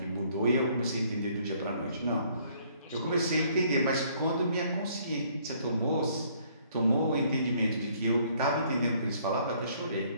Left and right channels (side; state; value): both; inverted; correlation -0.63